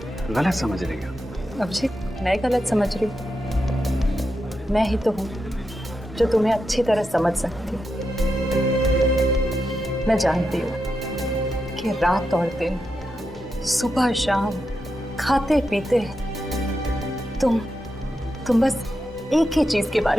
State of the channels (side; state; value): both; normal; correlation 0.87